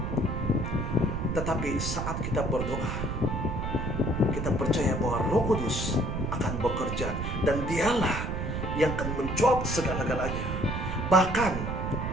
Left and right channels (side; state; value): right; noise; rumble, 2 dB below the sound